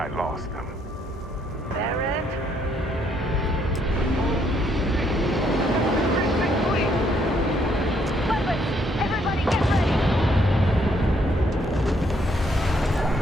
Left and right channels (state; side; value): normal; both; correlation 0.70